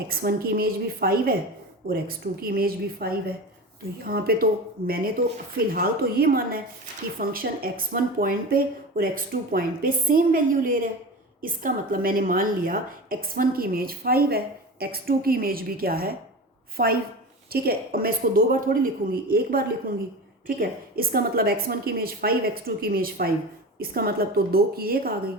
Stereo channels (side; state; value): both; normal; correlation 0.29